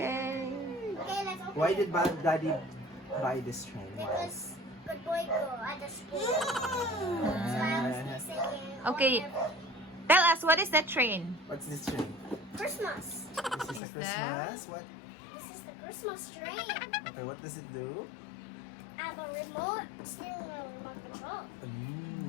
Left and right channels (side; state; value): right; drops out; at 13.8 s